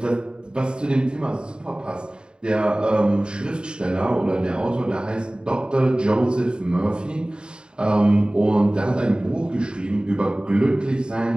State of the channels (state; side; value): late; left; 0.050 ms